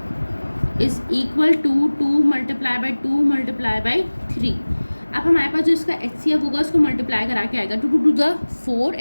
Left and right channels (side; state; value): both; inverted; correlation -1.00